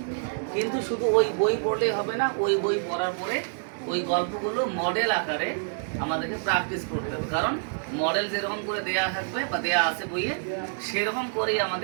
কিন্তু শুধু ওই বই পড়লেই হবে না, ওই বই পড়ার পরে ওই গল্পগুলো মডেল আকারে আমাদেরকে প্র্যাকটিস করতে হবে। কারণ মডেল যেরকম করে দেয়া থাকবে বা দেয়া আছে বইয়ে, সেরকম করেই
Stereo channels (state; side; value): silent; left; digital silence